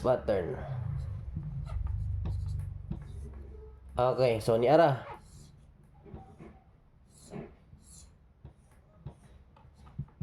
pattern. Okay, so ni ara.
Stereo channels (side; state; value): both; identical; correlation 1.00